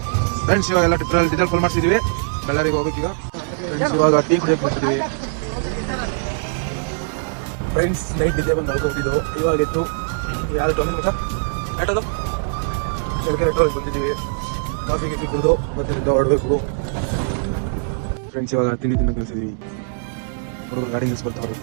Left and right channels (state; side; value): silent; left; digital silence